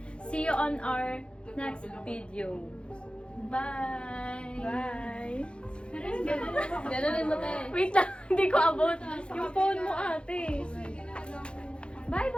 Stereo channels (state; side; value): late; right; 0.056 ms